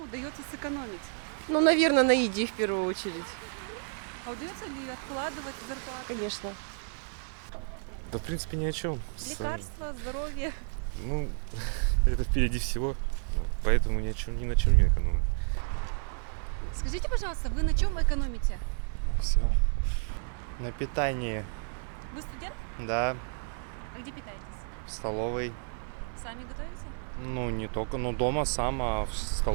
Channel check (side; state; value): left; silent; 57 dB below the other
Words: удается сэкономить? Ну, наверное, на еде в первую очередь. А удается ли откладывать зарплату? Конечно. Да, в принципе, ни о чем. Лекарства, здоровье. Ну, это впереди всего, поэтому ни на чем не экономим. Скажите, пожалуйста, вы на чем экономите? Все. На питании, Вы студент? да, А где питаетесь? в столовой. Сами готовите? Ну, не только, ну, дома сам, а в